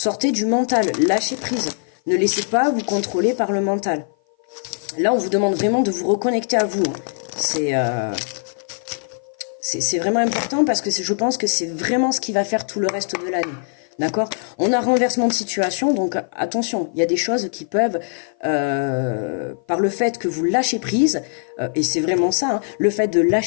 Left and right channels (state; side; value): silent; right; 55 dB below the other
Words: du mental, lâchez prise. Ne laissez pas vous contrôler par le mental. Là, on vous demande vraiment de vous reconnecter à vous. C'est vraiment important parce que je pense que c'est vraiment ce qui va faire tout le reste de l'année. D'accord? On a renversement de situation, donc attention, il y a des choses qui peuvent, par le fait que vous lâchez prise, et c'est vraiment ça, hein, le fait de